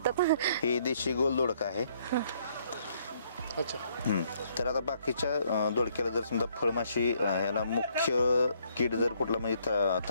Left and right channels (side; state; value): both; inverted; correlation -0.68